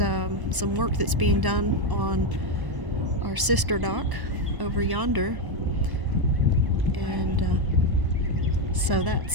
some work that's being done on our sister dock over yonder. And so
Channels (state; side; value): late; left; 1.0 ms